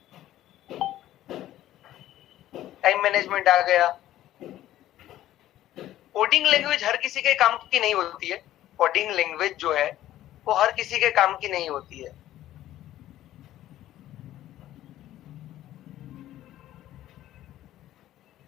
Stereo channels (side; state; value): right; quieter; 13.6 dB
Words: टाइम मैनेजमेंट आ गया। कोडिंग लैंग्वेज हर किसी के काम की नहीं होती है, कोडिंग लैंग्वेज जो है वो हर किसी के काम की नहीं होती है।